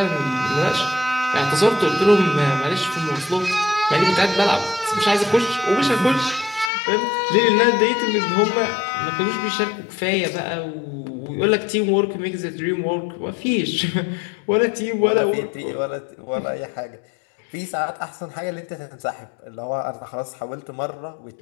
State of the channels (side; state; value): right; drops out; at 6.7 s